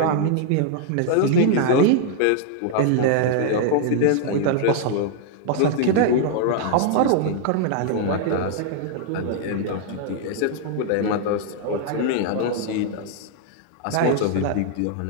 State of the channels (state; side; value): different; both; correlation -0.01